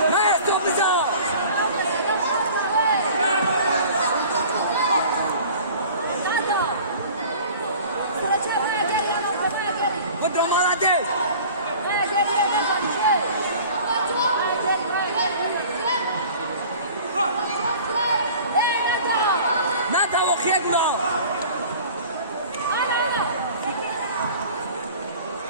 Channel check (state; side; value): inverted; both; correlation -0.44